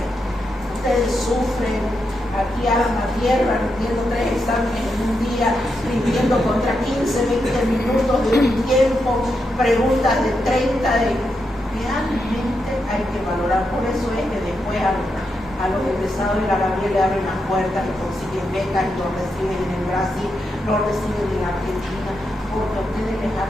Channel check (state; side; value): normal; both; correlation 0.84